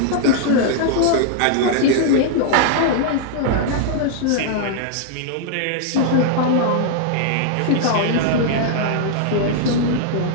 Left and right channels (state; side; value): different; both; correlation -0.01